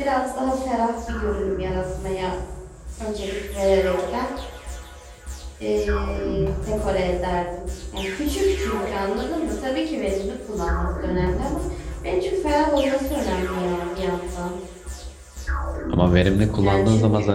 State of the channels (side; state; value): both; identical; correlation 1.00